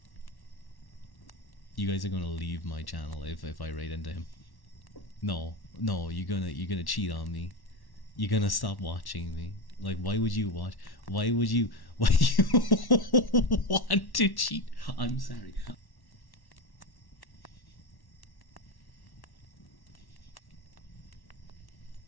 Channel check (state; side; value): late; right; 1.1 ms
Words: You guys are gonna leave my channel if I raid into him. No, you're gonna cheat on me. You're gonna stop watching me. Like, why would you want to cheat? I'm sorry.